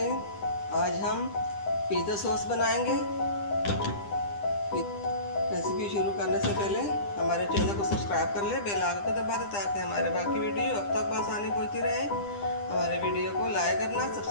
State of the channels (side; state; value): right; late; 10 ms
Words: आज हम पिज़्ज़ा सॉस बनाएंगे। रेसिपी शुरू करने से पहले हमारे चैनल को सब्सक्राइब कर ले, बेल आइकन को दबा दे ताकि हमारे बाकी वीडियो अब तक आसानी पहुँचती रहे। हमारे वीडियो को लाइक करना,